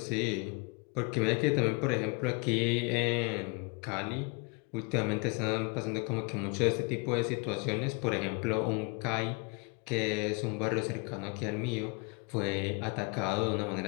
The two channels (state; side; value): quieter; right; 32.5 dB